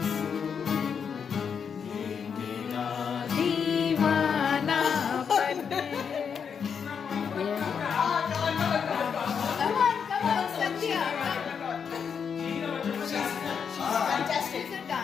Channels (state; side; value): quieter; right; 6.8 dB